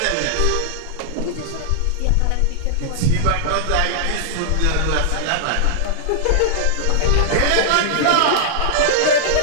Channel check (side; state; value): both; different; correlation -0.01